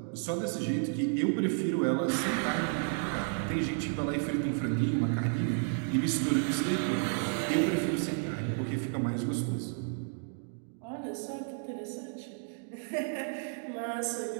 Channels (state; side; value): silent; left; 56 dB below the other